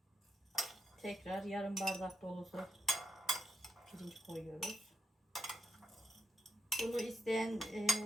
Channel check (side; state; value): both; normal; correlation 0.82